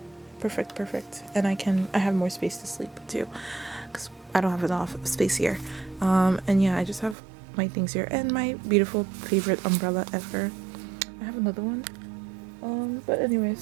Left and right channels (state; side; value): drops out; left; at 7.2 s